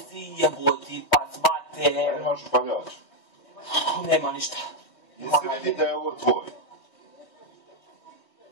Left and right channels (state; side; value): late; right; 3.2 ms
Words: jeboti pac mate. a imaš upaljač. Nema ništa. Jesi vidi da je ovo tvoj?